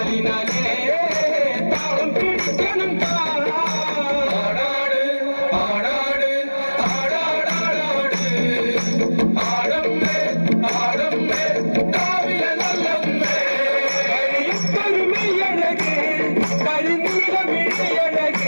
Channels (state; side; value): inverted; both; correlation -1.00